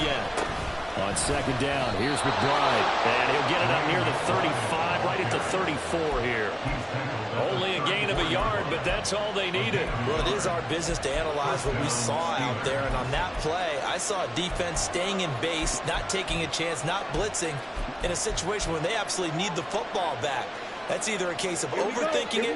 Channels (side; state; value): both; identical; correlation 1.00